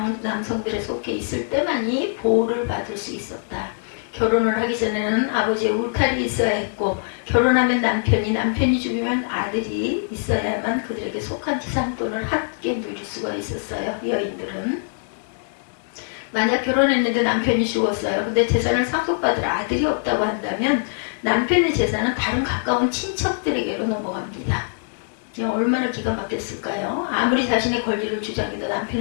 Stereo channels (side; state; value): right; silent; 64 dB below the other